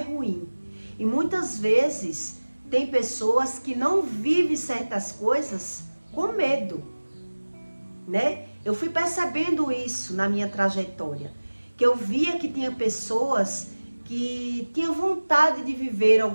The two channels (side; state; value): both; inverted; correlation -1.00